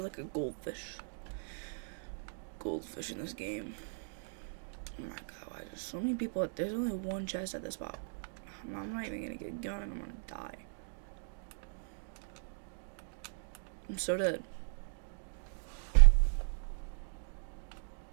like a goldfish. Goldfish in this game. Oh my god, why there's so many people? There's only one chest at this spot. I'm not even gonna get a gun, I'm gonna die. I'm so dead.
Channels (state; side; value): silent; left; digital silence